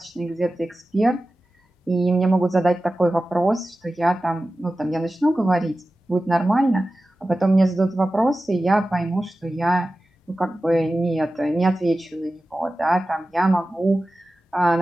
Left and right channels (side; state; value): both; normal; correlation 0.95